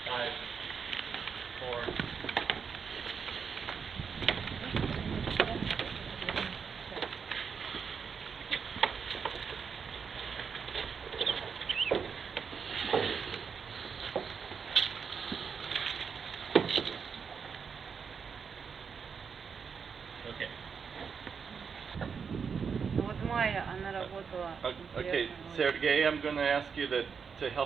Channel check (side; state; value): left; quieter; 6.2 dB